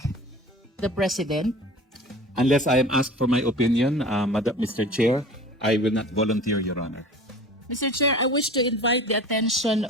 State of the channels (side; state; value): both; normal; correlation 0.40